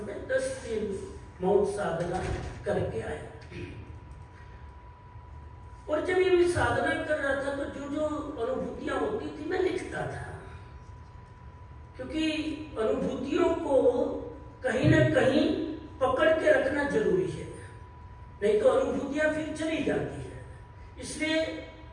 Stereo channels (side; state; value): both; identical; correlation 1.00